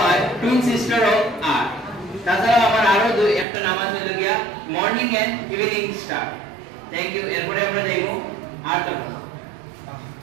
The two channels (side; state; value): left; drops out; at 3.5 s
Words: টুইন সিস্টার অফ আর্থ। তাছাড়া আমার আরো একটা নাম আছে হলো গিয়া morning and evening star. Thank you. এরপরে আমরা যাইবো আর্থ গ্রহ।